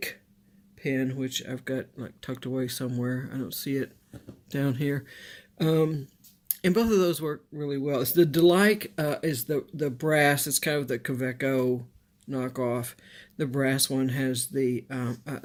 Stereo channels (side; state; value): both; identical; correlation 1.00